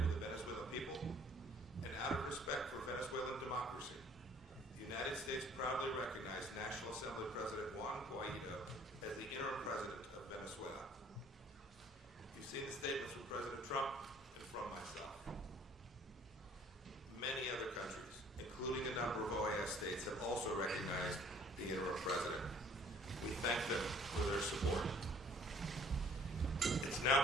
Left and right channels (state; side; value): normal; both; correlation 0.56